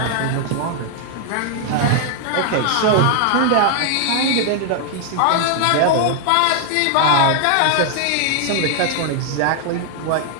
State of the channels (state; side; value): different; both; correlation 0.00